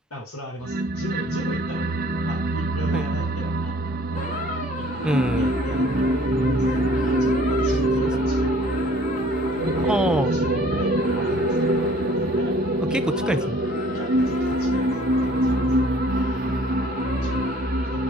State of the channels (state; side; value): normal; both; correlation 0.55